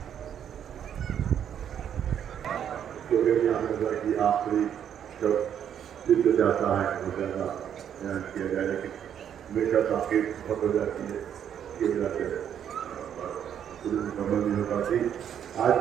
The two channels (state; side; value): quieter; left; 9.2 dB